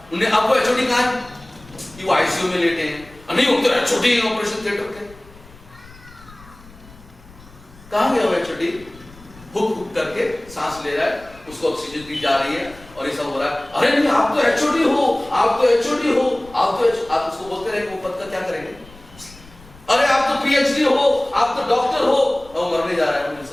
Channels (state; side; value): noise; left; rumble, 22 dB below the sound